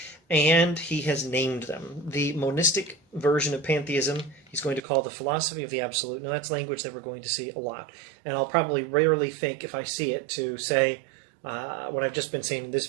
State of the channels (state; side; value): drops out; left; at 4.8 s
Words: and he has named them. The monistic version of pantheism he's going to call the philosophy of the absolute. Now, that's language that we're going to see a lot, and I'll probably rarely think, if I see it, to say what I've just been saying in this